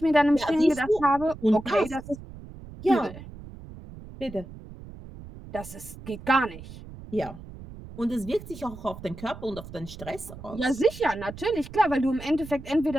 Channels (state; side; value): noise; right; rumble, 15 dB below the sound